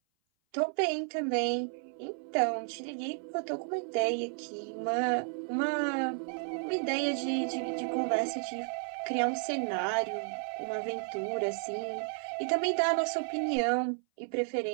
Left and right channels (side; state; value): left; silent; 56 dB below the other